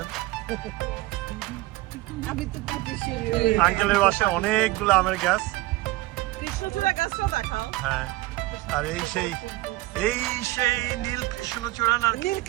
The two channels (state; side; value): quieter; left; 18.8 dB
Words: আমি তো পাচ্ছি আঙ্কেলের বাসায় অনেকগুলো আমের গাছ। কৃষ্ণচূড়া গাছটা দেখাও। হ্যাঁ, আর এই সেই নীল কৃষ্ণচূড়া না? নীল ও,